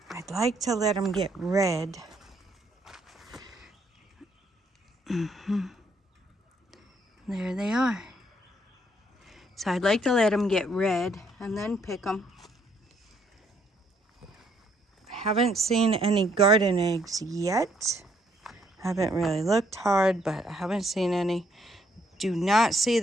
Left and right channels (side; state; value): both; normal; correlation 0.69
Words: I'd like to let them get red. There they are. So I'd like to let them get red and then pick them. Haven't seen any garden eggs yet. Haven't really looked hard, but I haven't seen any. Do not see